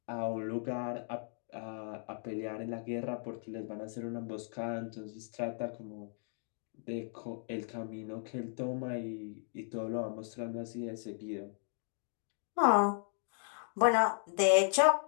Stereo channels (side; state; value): right; silent; 54 dB below the other